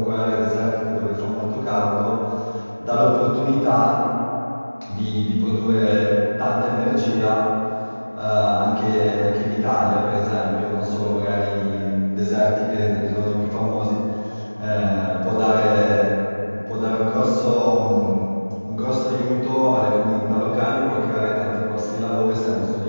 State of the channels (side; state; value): both; inverted; correlation -1.00